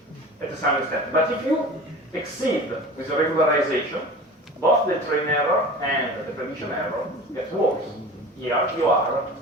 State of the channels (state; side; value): normal; both; correlation 0.37